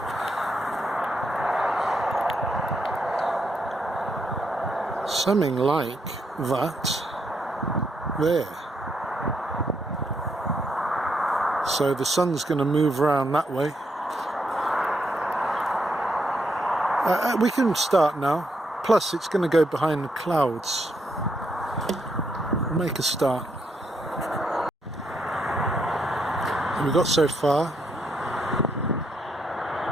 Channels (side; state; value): both; normal; correlation 0.77